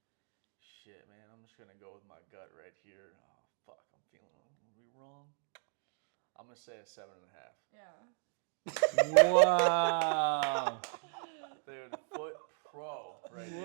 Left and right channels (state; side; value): silent; left; 53 dB below the other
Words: Shit, man. I'm just gonna go with my gut right here. Oh fuck, I'm feeling. Are we wrong? I'm gonna say a 7.5. Yeah. Wow. Dude, foot pro right